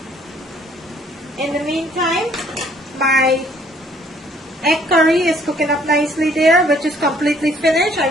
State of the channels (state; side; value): normal; both; correlation 0.61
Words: In the meantime, my egg curry is cooking up nicely there, which is completely finished. I